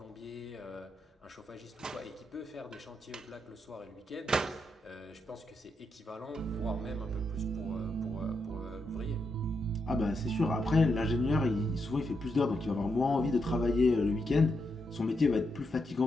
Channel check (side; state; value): both; normal; correlation 0.82